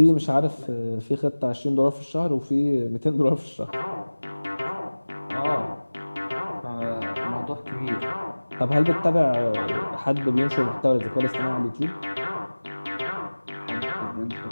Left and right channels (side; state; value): both; inverted; correlation -1.00